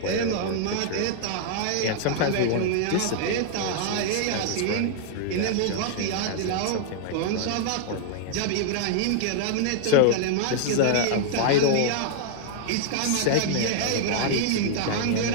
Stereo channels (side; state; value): both; different; correlation -0.01